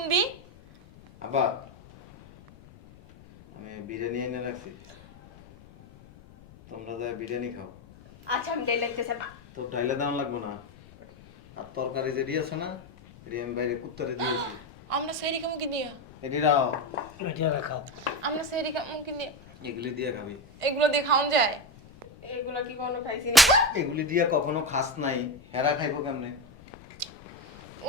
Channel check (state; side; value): noise; left; rumble, 23 dB below the sound